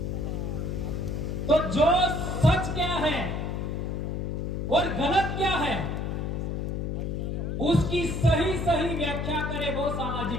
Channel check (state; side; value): noise; left; hum, 2 dB below the sound